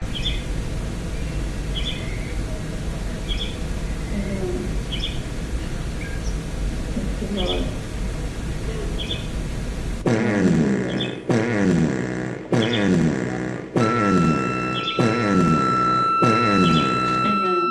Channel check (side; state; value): both; identical; correlation 1.00